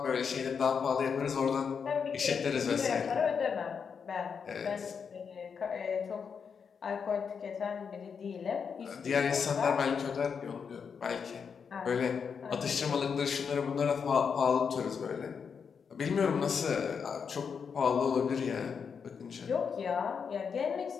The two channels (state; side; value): quieter; right; 6.3 dB